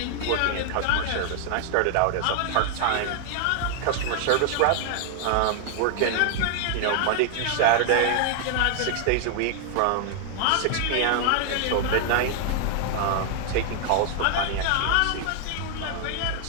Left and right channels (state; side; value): different; both; correlation 0.00